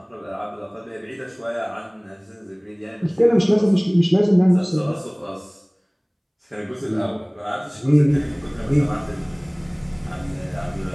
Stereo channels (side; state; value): both; identical; correlation 1.00